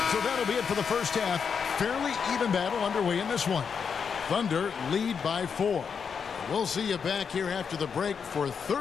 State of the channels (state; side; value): quieter; right; 6.4 dB